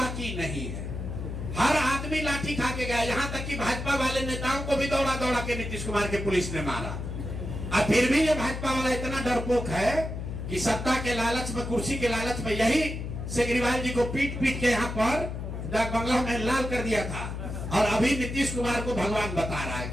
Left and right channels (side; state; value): left; noise; hum, 6 dB below the sound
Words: नहीं है। हर आदमी लाठी खा के गया, यहाँ तक कि भाजपा वाले नेताओं को भी दौड़ा दौड़ा के नीतीश कुमार के पुलिस ने मारा। और फिर भी ये भाजपा वाला इतना डरपोक है कि सत्ता के लालच में, कुर्सी के लालच में, यही केजरीवाल जी को पीट पीट के यहाँ पर डाक बंगला में लाल कर दिया था, और अभी नीतीश कुमार को भगवान बता रहा है।